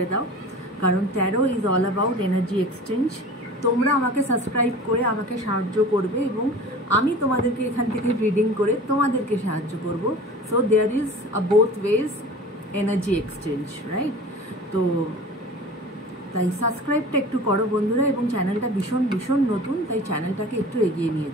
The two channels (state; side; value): normal; both; correlation 0.39